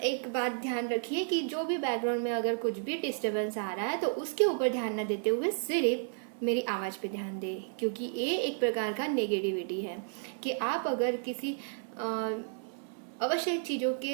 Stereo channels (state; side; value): silent; left; 56 dB below the other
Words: एक बात ध्यान रखिए कि जो भी बैकग्राउंड में अगर कुछ भी डिस्टरबेंस आ रहा है तो उसके ऊपर ध्यान न देते हुए सिर्फ मेरी आवाज़ पे ध्यान दें, क्योंकि ये एक प्रकार का नेगेटिविटी है कि आप अगर किसी आवश्यक चीज़ों